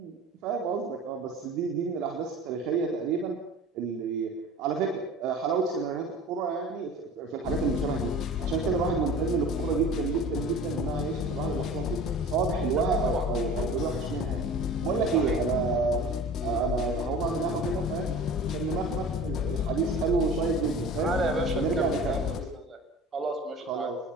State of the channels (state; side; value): normal; both; correlation 0.40